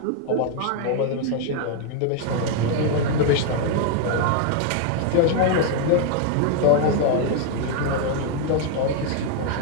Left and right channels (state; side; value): different; both; correlation 0.00